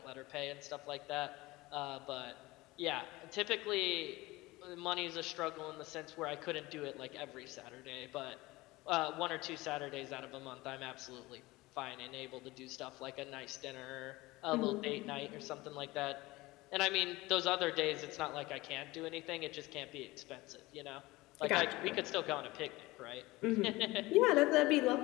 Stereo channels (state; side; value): quieter; right; 20.4 dB